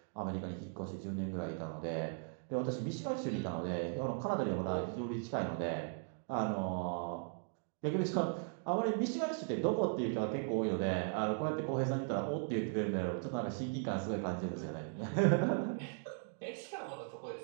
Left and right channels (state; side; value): silent; left; 52 dB below the other